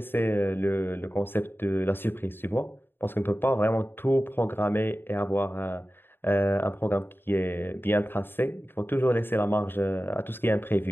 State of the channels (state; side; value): late; right; 0.10 ms